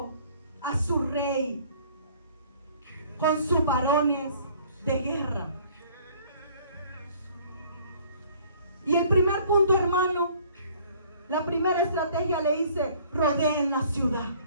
a su rey, con sus varones de guerra. Y el primer punto, hermano, la primera estrategia le dice: rodeen la ciudad.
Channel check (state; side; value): inverted; both; correlation -0.56